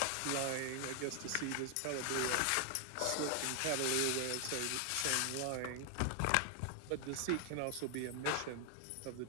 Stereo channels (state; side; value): different; both; correlation 0.00